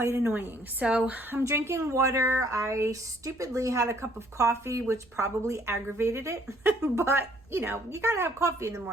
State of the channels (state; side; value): noise; right; rumble, 29 dB below the sound